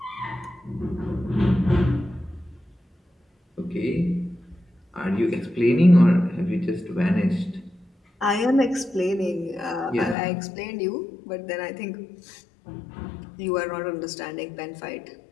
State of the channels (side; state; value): right; drops out; at 10.2 s